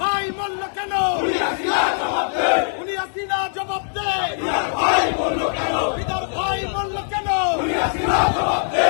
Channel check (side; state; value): right; silent; 65 dB below the other